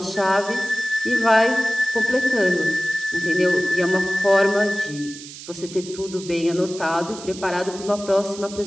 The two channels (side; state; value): right; noise; hiss, 14 dB below the sound